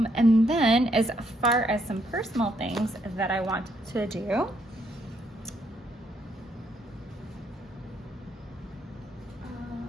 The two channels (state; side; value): normal; both; correlation 0.73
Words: And then as far as some personal things that I want to do,